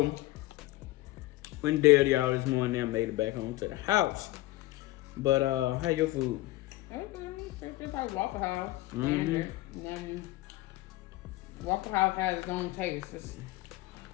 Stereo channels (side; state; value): right; quieter; 18.3 dB